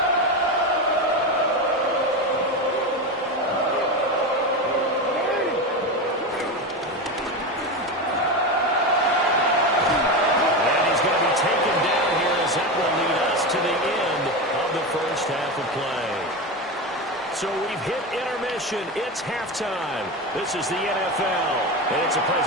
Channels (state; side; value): normal; both; correlation 0.19